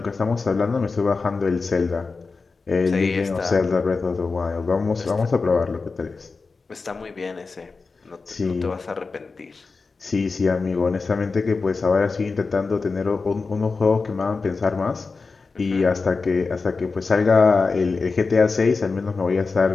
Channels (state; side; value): quieter; right; 4.3 dB